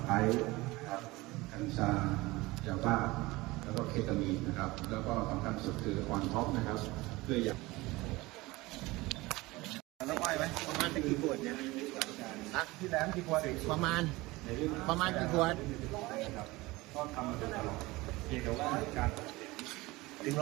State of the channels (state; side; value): quieter; left; 21.0 dB